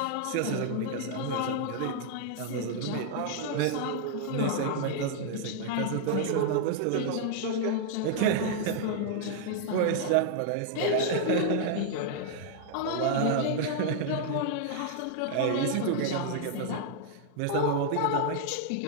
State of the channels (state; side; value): different; both; correlation -0.01